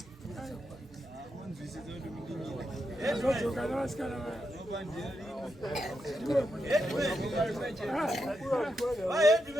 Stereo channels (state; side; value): normal; both; correlation 0.85